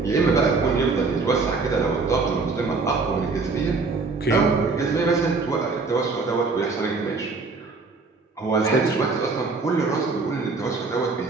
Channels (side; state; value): left; quieter; 4.1 dB